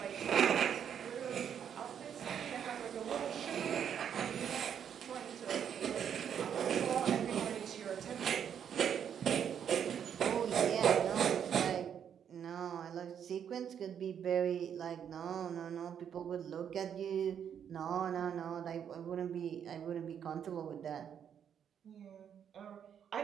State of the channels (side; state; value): left; quieter; 8.4 dB